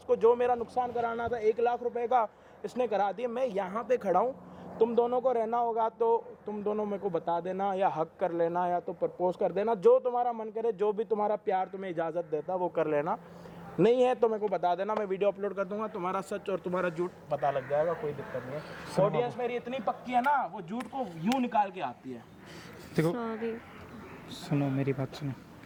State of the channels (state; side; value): identical; both; correlation 1.00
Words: जो मेरा नुकसान कराना था 1 लाख रुपए का इसने करा दिया। मैं यहाँ पे खड़ा हूँ, तुम दोनों को रहना होगा तो तुम दोनों मेरे को बता देना, या हक कर लेना, या तो प्रपोज कर देना, जो तुम्हारा मन करे, जो भी तुम्हारा प्यार तुम्हें इजाज़त देता वो कर लेना। नहीं है तो मेरे को बता देना, मैं वीडियो अपलोड कर दूंगा, तुम्हारा सच और तुम्हारा झूठ पता लग जाएगा, कोई दिक्कत नहीं है। ऑडियंस मेरी इतनी पक्की है ना, वो झूठ को यूं निकाल के आती है। देखो सॉरी। सुनो मेरी बात सुनो,